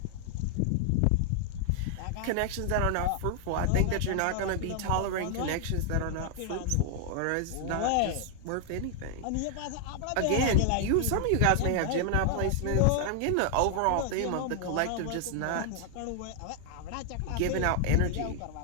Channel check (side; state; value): both; different; correlation 0.00